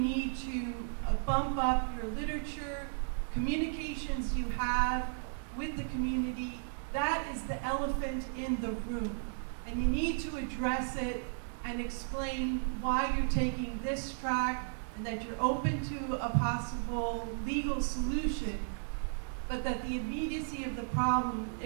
to bump up your literature, communications you have with the community. That is the elephant in the room. And you need to address it and explain why you're taking this track and that you're open to a possible legal solution. but that the immediacy of the problem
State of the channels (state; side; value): silent; left; digital silence